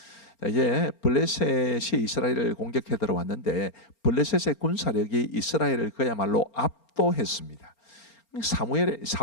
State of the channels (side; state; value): right; late; 4.4 ms